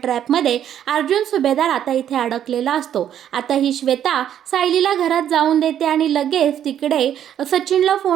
अर्जुन सुभेदार आता इथे अडकलेला असतो. आता ही श्वेता सायलीला घरात जाऊन देते आणि लगेच तिकडे सचिनला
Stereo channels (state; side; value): quieter; left; 10.1 dB